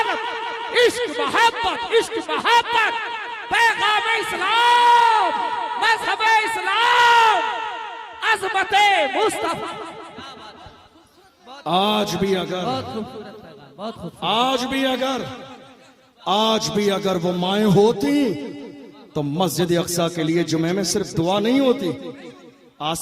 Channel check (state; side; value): identical; both; correlation 1.00